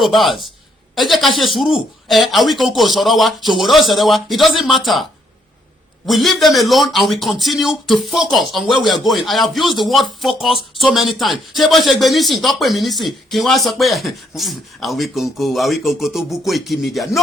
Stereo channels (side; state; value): both; normal; correlation 0.71